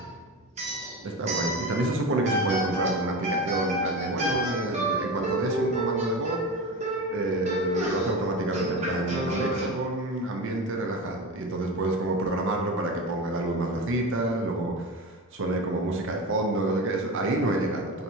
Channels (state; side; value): normal; both; correlation 0.26